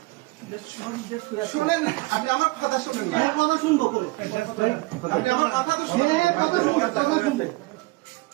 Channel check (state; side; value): quieter; left; 22.7 dB